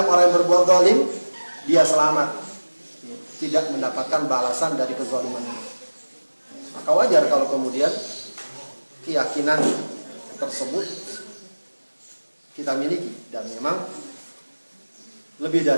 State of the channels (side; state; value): both; inverted; correlation -1.00